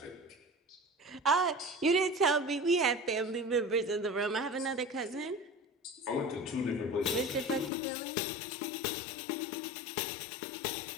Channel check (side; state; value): right; drops out; at 7.7 s